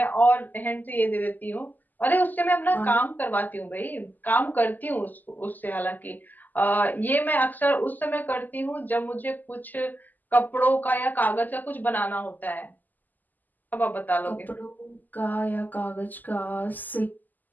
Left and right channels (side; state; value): right; late; 0.085 ms